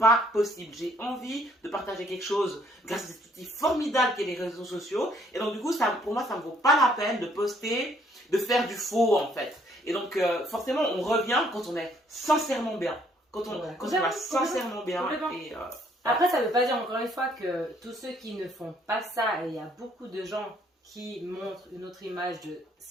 possible. J'ai envie de partager quelque chose grâce à cet outil formidable qu'est les réseaux sociaux. Et donc, du coup, pour moi, ça ne vaut pas la peine de poster, de faire du faux, en fait. Et donc, forcément, on revient quand on est sincèrement bien. Quand on va sincèrement bien. Après, ça ne veut pas dire, encore une fois, que tous ceux qui ne font pas ça, et il y a beaucoup de gens qui montrent une autre image de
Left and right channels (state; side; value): normal; both; correlation 0.65